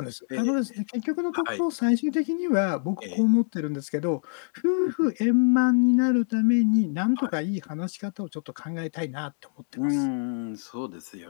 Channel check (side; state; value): right; silent; digital silence